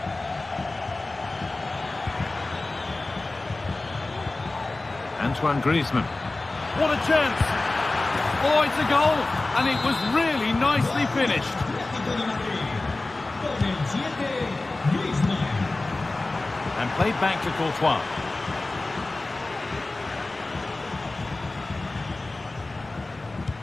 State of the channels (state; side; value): quieter; right; 3.1 dB